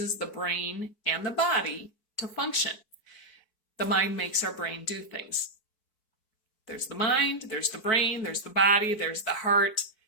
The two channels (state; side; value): late; right; 4.6 ms